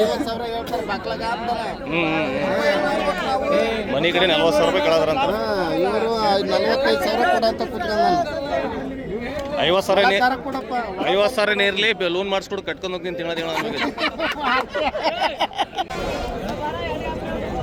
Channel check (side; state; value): both; identical; correlation 1.00